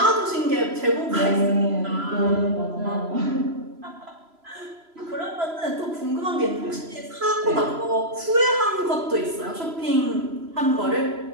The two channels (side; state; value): left; late; 3.0 ms